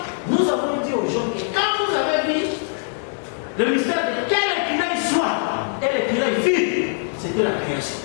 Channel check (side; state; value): right; silent; digital silence